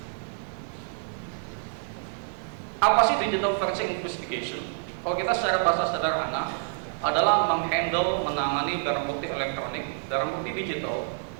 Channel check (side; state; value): left; silent; 55 dB below the other